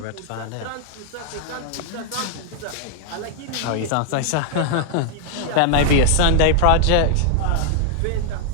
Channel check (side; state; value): both; different; correlation 0.00